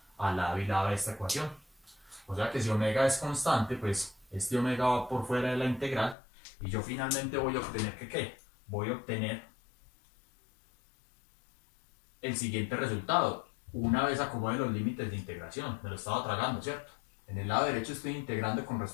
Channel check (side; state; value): right; drops out; at 6.2 s